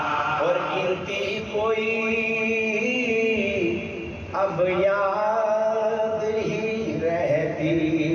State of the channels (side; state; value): both; identical; correlation 1.00